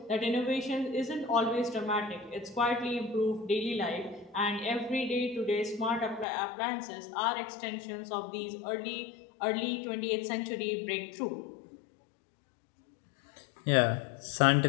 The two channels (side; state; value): right; drops out; at 6.2 s